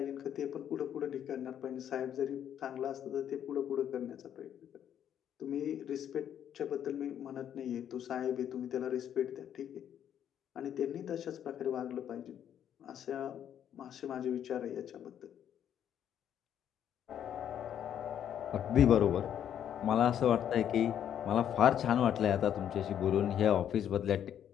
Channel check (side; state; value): right; quieter; 9.7 dB